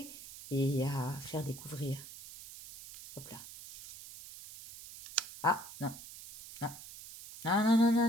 et à faire découvrir. Hop là. Ah, non, non. Non, non, non, non,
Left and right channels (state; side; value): noise; right; hiss, 14 dB below the sound